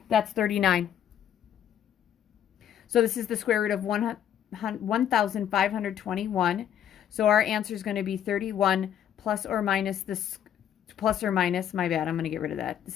That's 39. So this is the square root of 1,521. So our answer is going to be 31 plus or minus this, plus or minus, my bad, I'm going to get rid of that.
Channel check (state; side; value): quieter; right; 9.9 dB